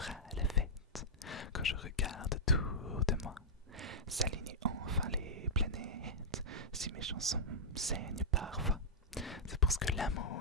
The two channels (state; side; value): normal; both; correlation -0.08